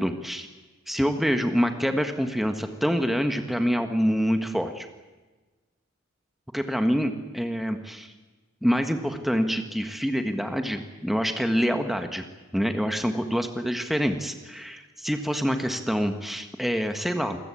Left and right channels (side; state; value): both; normal; correlation 0.95